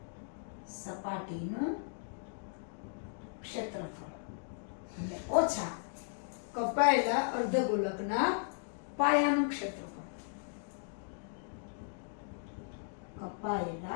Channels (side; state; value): right; silent; digital silence